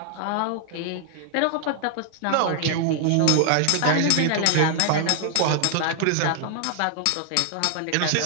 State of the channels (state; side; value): different; both; correlation 0.00